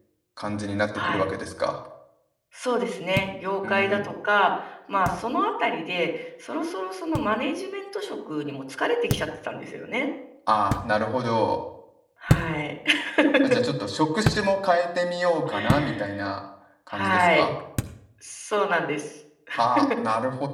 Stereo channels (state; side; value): identical; both; correlation 1.00